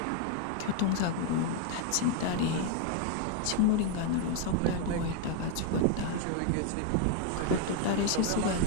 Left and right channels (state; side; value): different; both; correlation 0.01